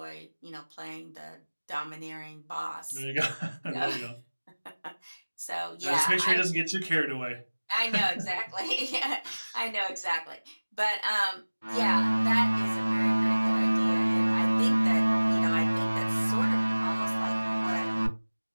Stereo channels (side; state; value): both; inverted; correlation -1.00